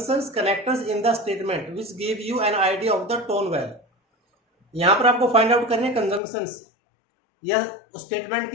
connectors in the statement which give you an idea of the tone well. यहां पर आपको फाइंड आउट करने कंजंक्शंस या स्टेटमेंट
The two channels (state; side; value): drops out; right; at 6.2 s